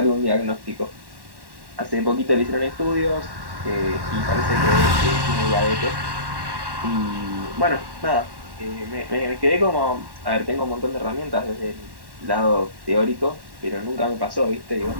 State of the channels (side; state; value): left; late; 1.1 ms